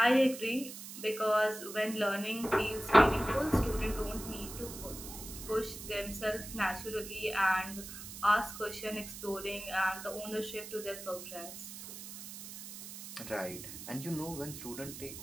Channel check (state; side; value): noise; right; hiss, 11 dB below the sound